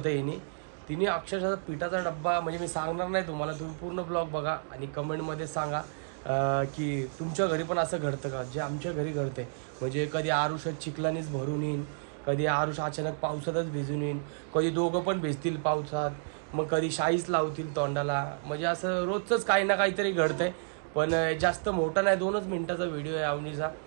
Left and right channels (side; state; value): left; silent; digital silence